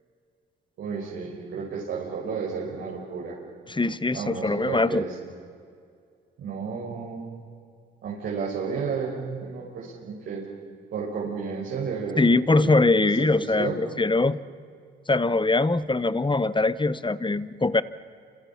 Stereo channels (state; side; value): normal; both; correlation 0.61